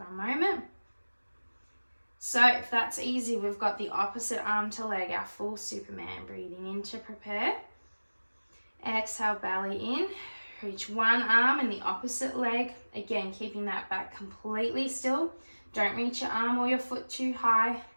a moment. So if that's easy, we've got the opposite arm to leg, our full Superman. Breathing in to prepare. Exhale, belly in. Reach one arm and the opposite leg. Again, keeping that back completely still. Don't reach your arm or your foot too high.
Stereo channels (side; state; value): both; inverted; correlation -1.00